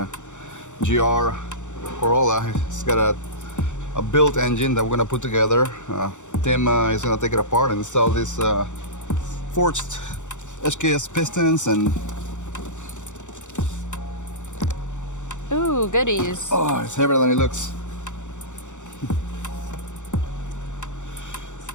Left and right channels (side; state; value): right; late; 0.85 ms